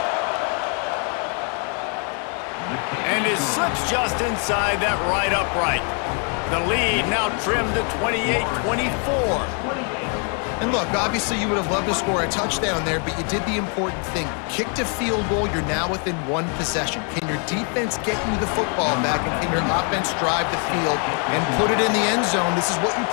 And it slips just inside that right upright. The lead now trimmed to 28-24. And look, obviously you would have loved to score a touchdown there, but you did the important thing. Kicked a field goal, you're now within one possession. Can your defense get you the football back, and can your offense drive the field and put it in the end zone? This is what you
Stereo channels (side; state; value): right; quieter; 39.8 dB